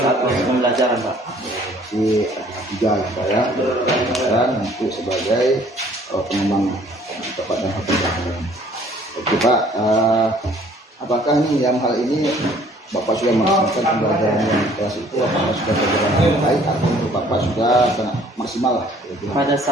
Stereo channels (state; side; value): normal; both; correlation 0.57